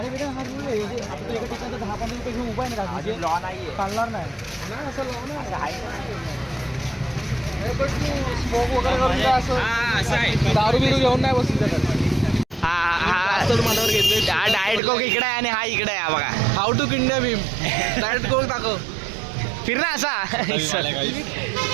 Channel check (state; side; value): drops out; left; at 14.8 s